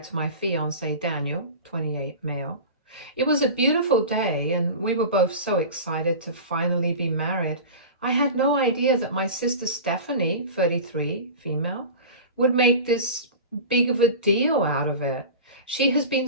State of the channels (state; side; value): inverted; both; correlation -0.32